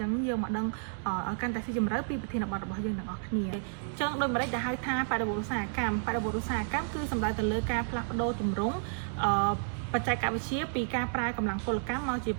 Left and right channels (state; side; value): silent; left; digital silence